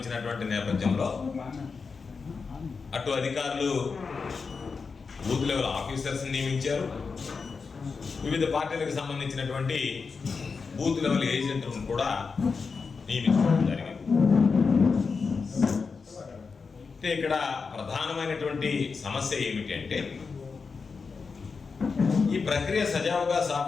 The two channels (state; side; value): quieter; right; 5.0 dB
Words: నేపథ్యంలో అటు అధికారులు బూత్ లెవెల్ ఆఫీసర్స్ నియమించారు, వివిధ పార్టీలకు సంబంధించినటువంటి బూత్ లెవెల్ ఏజెంట్లను కూడా నియమించడం జరిగింది. అయితే ఇక్కడ ప్రధానమైనటువంటి సమస్య ఏమిటి అంటే, ఈ ప్రక్రియ సజావుగా